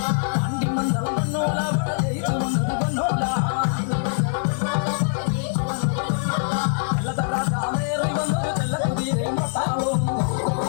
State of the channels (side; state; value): right; silent; digital silence